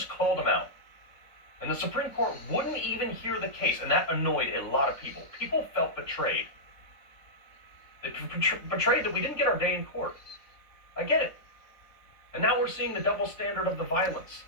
called them out. And the Supreme Court wouldn't even hear the case, and that annoyed a lot of people. People felt betrayed. They betrayed that we didn't get our day in court. I get it. And now we're seeing the double standard of the violence.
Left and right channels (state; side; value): late; right; 3.8 ms